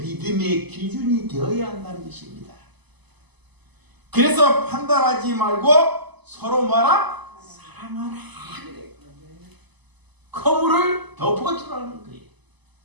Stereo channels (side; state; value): left; late; 1.0 ms